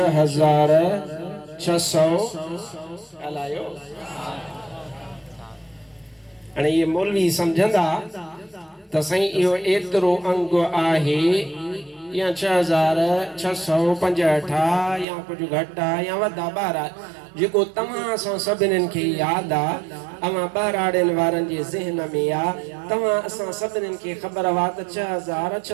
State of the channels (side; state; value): left; drops out; at 15.1 s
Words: हलायो। हाणे ये मौलवी समझंदा त साईं इहो एतिरो अंग आहे या 6665 या कुछ घट आहे या वधा ॿार जेको तव्हां असां सभिनीनि खे यादि आहे, अवां ॿाराड़ियुनि वारनि जे ज़हन में आहे। तव्हां असां सभिनीनि खे ख़बर आहे त